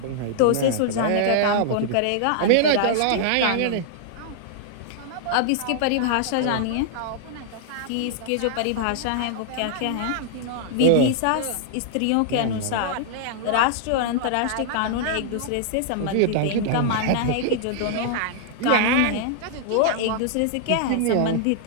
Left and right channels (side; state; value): both; different; correlation -0.01